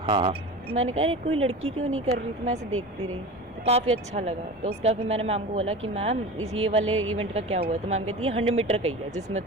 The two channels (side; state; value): both; normal; correlation 0.32